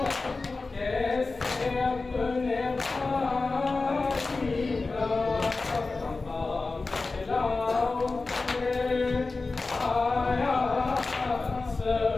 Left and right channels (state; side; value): quieter; right; 3.7 dB